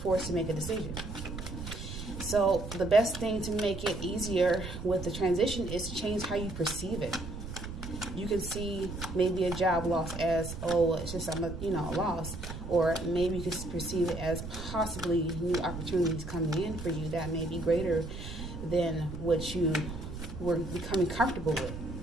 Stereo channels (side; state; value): right; noise; rumble, 8 dB below the sound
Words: to make a decision. So the best thing to make it easier with the transition is to change how you perceive it. You can see maybe a job loss as, oh, it's just a loss. Or maybe you can perceive it as possibly new opportunities coming in for you that may be greater than what you were becoming comfortable with.